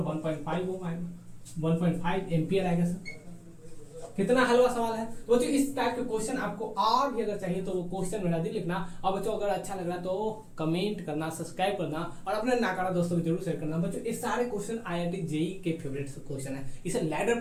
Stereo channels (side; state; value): both; identical; correlation 1.00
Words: 1.5 ओम आएगा, 1.5 एम्पियर आएगा सर। कितना हलवा सवाल है। तो बच्चों इस टाइप के क्वेश्चन आपको और भी अगर चाहिए तो वो क्वेश्चन मेरा दी लिखना। और बच्चों अगर अच्छा लग रहा तो कमेंट करना, सब्सक्राइब करना और अपने नाकारा दोस्तों को जरूर शेयर करना। बच्चों ये सारे क्वेश्चन आईआईटी जेई के फेवरेट क्वेश्चन है, इसे लैडर